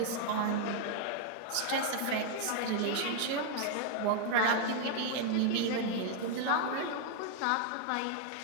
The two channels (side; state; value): both; different; correlation 0.00